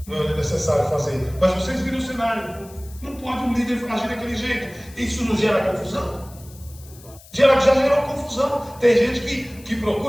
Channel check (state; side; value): noise; left; hiss, 22 dB below the sound